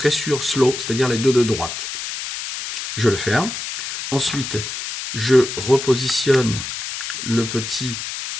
sur slow, c'est-à-dire les deux de droite. Je le ferme. Ensuite, je repositionne le petit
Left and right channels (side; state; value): left; noise; hiss, 6 dB below the sound